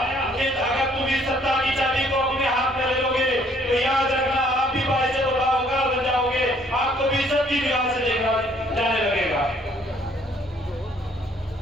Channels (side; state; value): both; normal; correlation 0.63